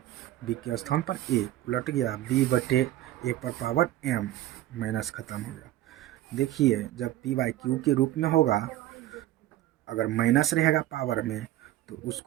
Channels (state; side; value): quieter; left; 14.3 dB